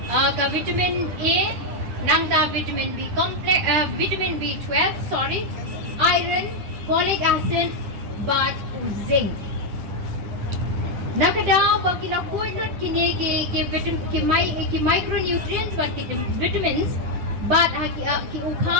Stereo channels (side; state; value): left; late; 9.9 ms